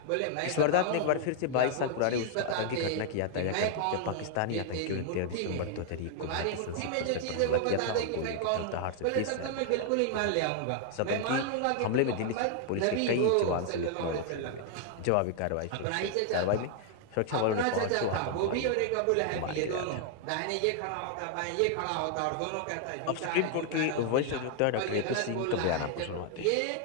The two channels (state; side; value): different; both; correlation 0.00